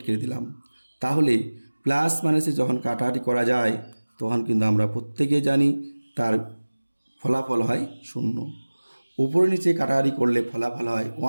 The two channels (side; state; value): both; inverted; correlation -1.00